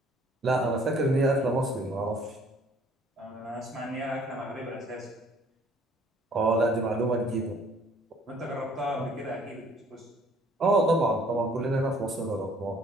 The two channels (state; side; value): normal; both; correlation 0.58